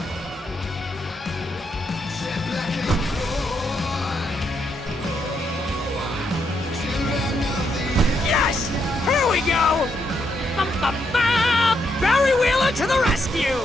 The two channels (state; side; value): normal; both; correlation 0.78